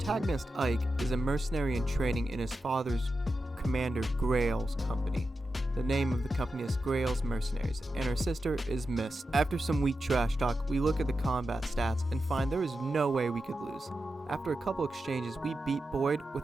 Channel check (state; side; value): normal; both; correlation 0.90